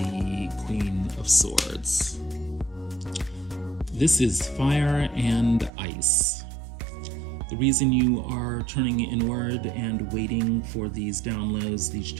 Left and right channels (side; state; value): left; drops out; at 5.7 s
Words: Queen of Swords. This is fire and ice. The reason you are turning inward and waiting for these downloads, these